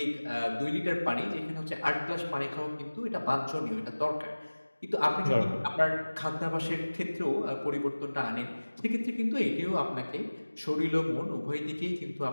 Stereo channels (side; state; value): both; inverted; correlation -1.00